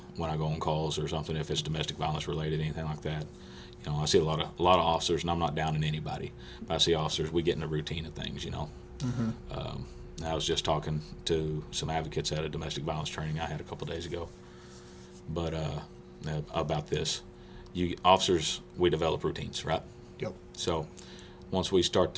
when I go on calls or something, if it's domestic violence related, anything like that, I see a lot of officers, and I'm not downing anybody, but I see officers, we get in the routine of things, I was just talking to some advocates at a domestic violence training I had a couple days ago, but about this. Officers, we develop routines, right? Yep. So once we start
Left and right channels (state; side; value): identical; both; correlation 1.00